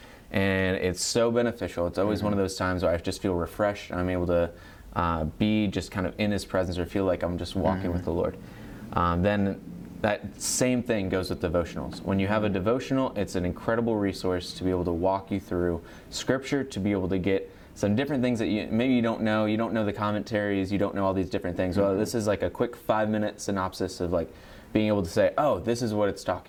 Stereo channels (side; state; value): both; identical; correlation 1.00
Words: And it's so beneficial. It's always one of those times where I just feel refreshed. I'm able to be just kind of in His presence, or feel like I'm just walking with the Lord. Then that same thing goes with devotionals. When you have a devotional, it's an incredible resource to be able to walk you through Scripture, to be able to get some different things that maybe you don't know the commentaries, you don't know all these different things. Well, this is like a quick 5-minute synopsis of like being able to say, oh, this is what it's